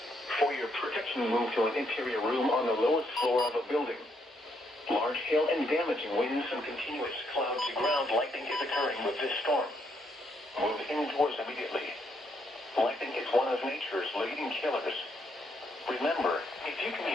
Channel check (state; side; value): normal; both; correlation 0.74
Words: For your protection, move to an interior room on the lowest floor of a building. Large hail and damaging winds and continuous cloud-to-ground lightning is occurring with this storm. Move indoors immediately. Lightning is one of nature's leading killers. Remember, if you can